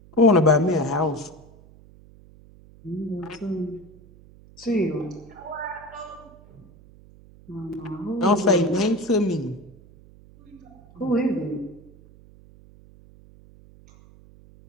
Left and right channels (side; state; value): right; noise; hum, 24 dB below the sound